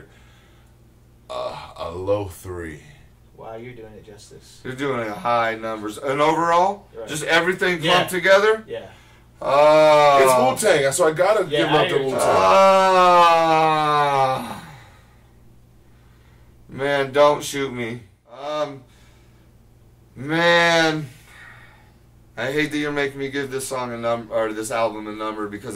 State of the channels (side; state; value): both; identical; correlation 1.00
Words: a low 3. wow, you're doing it justice. you're doing high numbers. And overall, Right. just everything Yeah. clumped together. Yeah. It's Wu-Tang, so I gotta Yeah, give I up to hear you. Wu-Tang. Man, don't shoot me. Man, I hate that you're making me give this song a number, or this album a number,